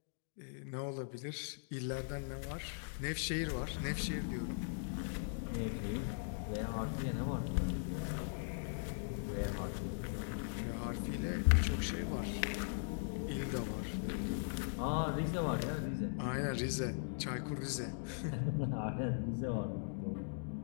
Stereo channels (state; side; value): silent; right; digital silence